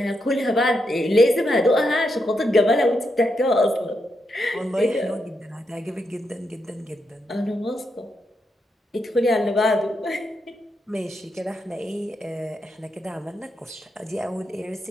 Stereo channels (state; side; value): normal; both; correlation 0.83